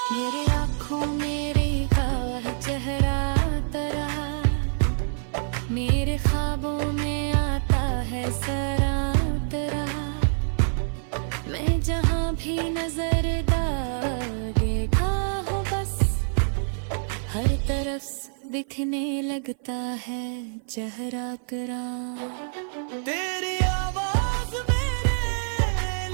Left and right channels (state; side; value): silent; left; 56 dB below the other